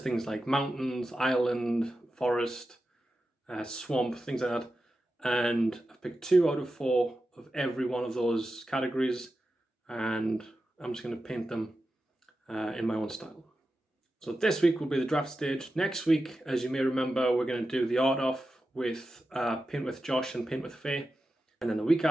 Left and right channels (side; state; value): both; normal; correlation 0.91